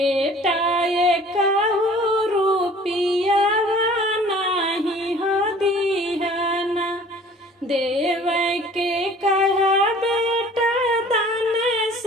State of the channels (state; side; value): normal; both; correlation 0.49